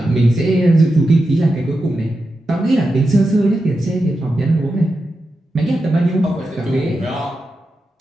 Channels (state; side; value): normal; both; correlation 0.89